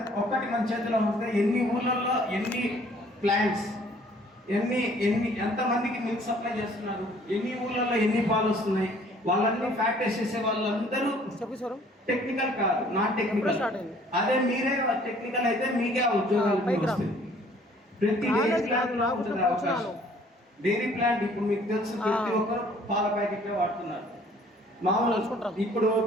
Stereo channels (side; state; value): both; normal; correlation 0.57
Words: ఒక్కటి మన చేతిలో ఉంటే ఎన్ని ఊళ్ళల్లో ఎన్ని ప్లాంట్స్ ఎంతమందికి మిల్క్ సప్లై చేస్తున్నారు, ఎన్ని ఊళ్ళల్లో ఎన్ని పాలు వస్తున్నాయి, వాళ్ళన్నీ ఫ్యాట్ టెస్ట్ చేసే వాళ్ళందరూ టెక్నికల్ కాదు, నాన్ టెక్నికల్. అదే మీరే టెక్నికల్ అయితే మీకే ఉద్యోగాలు వస్తాయి. ప్రతి అవకాశం. డైరీ ప్లాంట్ ఇప్పుడు మీకు తెలుసు, ప్రతి ఒక్కరు పాల ప్యాకెట్లే వాడుతున్నారు. మామూలు ఇప్పుడు